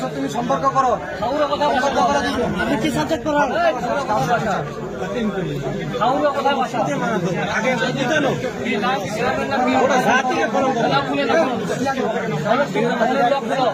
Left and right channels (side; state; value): both; identical; correlation 1.00